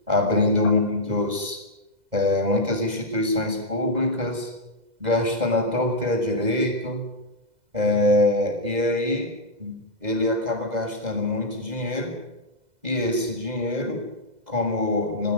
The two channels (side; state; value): left; late; 2.0 ms